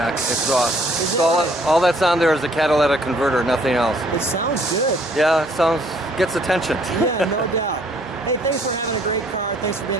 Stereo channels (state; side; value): normal; both; correlation 0.62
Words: exhaust. So all that's on there is a catalytic converter, nothing else. It sounds good. Yeah, it gets attention. Yeah, no doubt. Hey, thanks for having a great car. Thanks for being